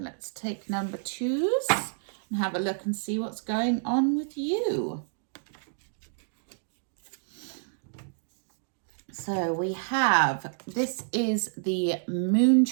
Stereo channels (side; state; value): left; silent; digital silence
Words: take number twos and have a look and see what's going on with you. So we have, this is the